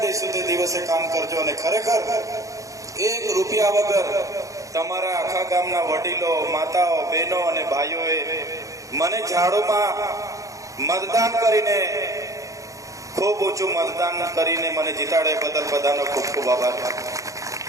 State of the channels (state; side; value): late; left; 0.16 ms